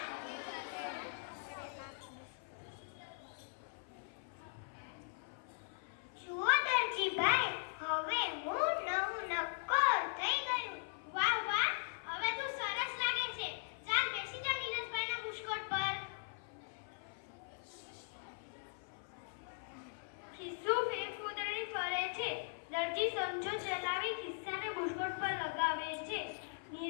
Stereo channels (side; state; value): right; silent; 51 dB below the other